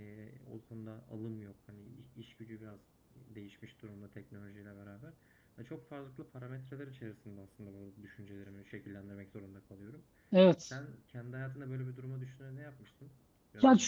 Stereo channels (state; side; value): identical; both; correlation 1.00